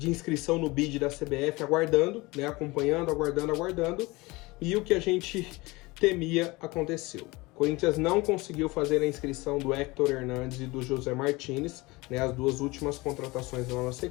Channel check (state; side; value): quieter; right; 22.8 dB